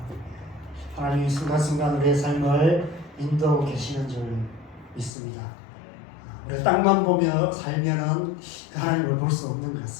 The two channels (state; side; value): drops out; right; at 5.1 s